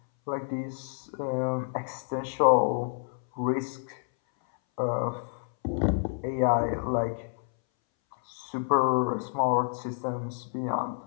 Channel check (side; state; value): right; silent; 59 dB below the other